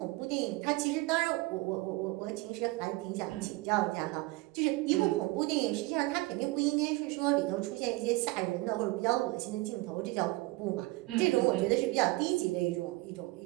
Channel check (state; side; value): quieter; left; 21.8 dB